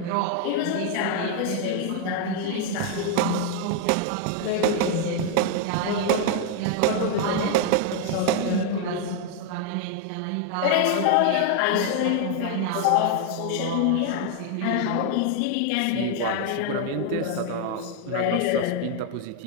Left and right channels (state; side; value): different; both; correlation 0.00